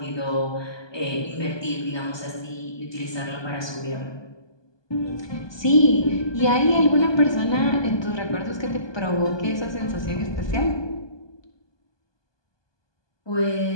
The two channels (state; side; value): late; right; 1.2 ms